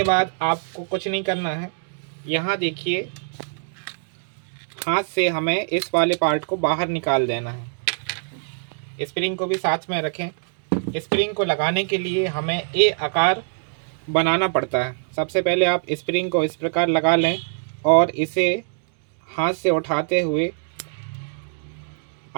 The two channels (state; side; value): silent; left; digital silence